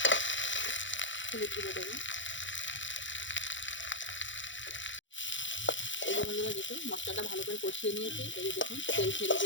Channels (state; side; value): late; right; 0.55 ms